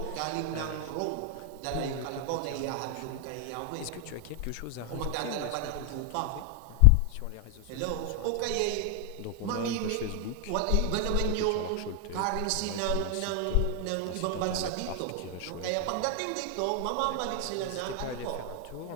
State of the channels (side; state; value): both; different; correlation 0.00